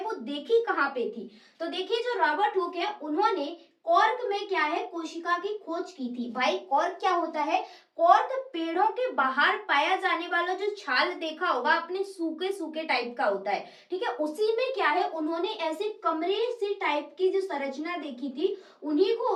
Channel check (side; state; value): both; identical; correlation 1.00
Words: वो देखी कहाँ पे थी। तो देखिए, जो रॉबर्ट हुक है उन्होंने कॉर्क में क्या है, कोशिका की खोज की थी। भाई कॉर्क क्या होता है? कॉर्क पेड़ों के बाहर पाया जाने वाला जो छाल देखा होगा अपने सूखे सूखे टाइप का होता है। ठीक है, उसी में क्या है, उन्होंने ऐसे कमरे सी टाइप की जो संरचना देखी थी, उन्हीं